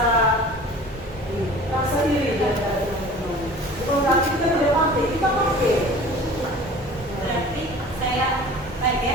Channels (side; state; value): both; normal; correlation 0.43